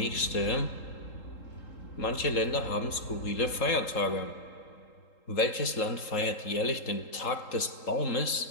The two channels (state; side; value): late; right; 3.8 ms